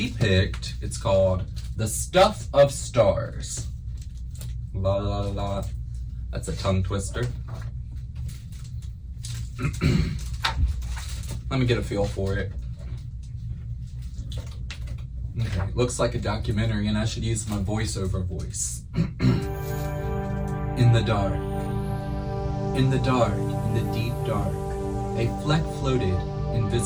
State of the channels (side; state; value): both; identical; correlation 1.00